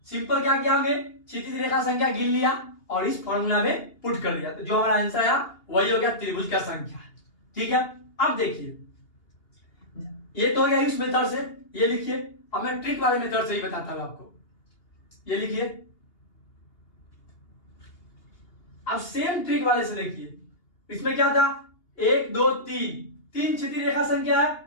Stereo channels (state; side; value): late; right; 2.8 ms